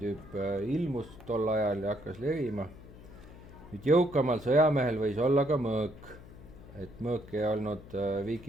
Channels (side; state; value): left; noise; hum, 18 dB below the sound